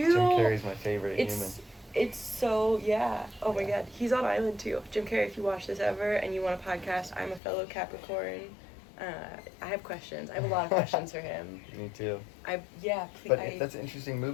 Jim Carrey's my favorite human. It's so, oh my Yeah. God, he's on Island too. Jim Carrey, if you watch this ever and you want a podcast, I'm a fellow Capricorn. I have questions. I have a lot of questions for him. Me too. Please. But that's an interesting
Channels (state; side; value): drops out; right; at 7.4 s